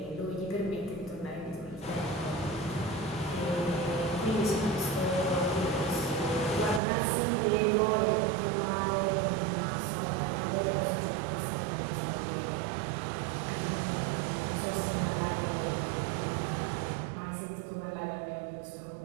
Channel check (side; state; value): left; drops out; at 6.8 s